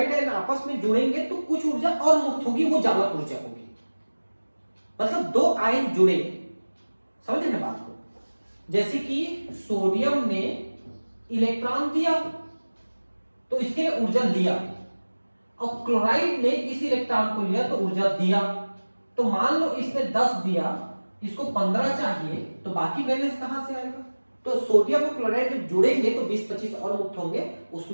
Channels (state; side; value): inverted; both; correlation -1.00